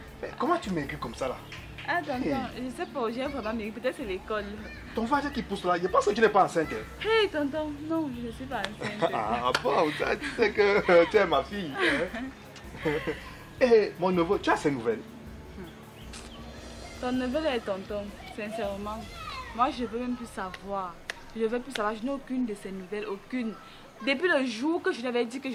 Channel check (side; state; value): both; identical; correlation 1.00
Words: Mais comment tu maigris comme ça là? Ah, tonton, je sais pas, j'ai vraiment maigri. Peut-être c'est l'école. Ton frère qui pousse là, je pense que tu n'es pas enceinte. Hey, tonton, non, je ne suis pas enceinte. Ah bon, ça, tu sais que tu es ma fille. Hein? Eh, mon neveu, tu as ces nouvelles? Ton neveu est tonton, sincèrement. Moi, je veux même plus savoir. Je veux plus savoir, je n'ai aucune de ces nouvelles, aucune. Depuis le jour que je lui avais dit que